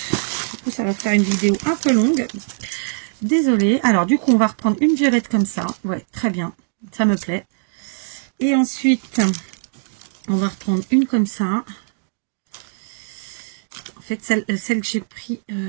Du coup, ça va faire une vidéo un peu longue. Désolée. Alors, du coup, on va reprendre une violette comme ça. Ouais, très bien. Ça me plaît. Et ensuite, on va reprendre une comme ça. En fait, celle que j'ai pris...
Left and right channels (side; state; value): left; silent; digital silence